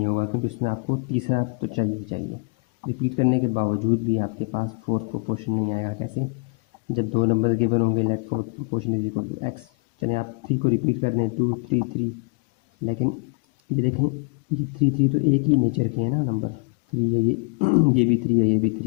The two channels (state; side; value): quieter; right; 33.2 dB